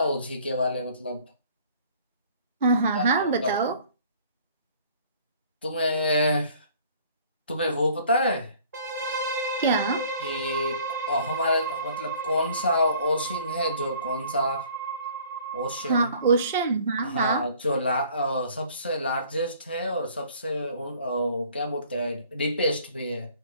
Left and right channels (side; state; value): both; inverted; correlation -0.54